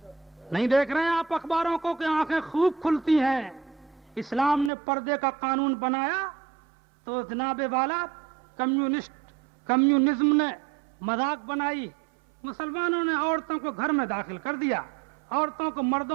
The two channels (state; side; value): drops out; left; at 4.7 s